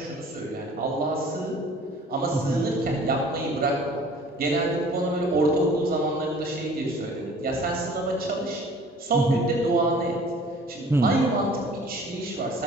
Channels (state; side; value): normal; both; correlation 0.50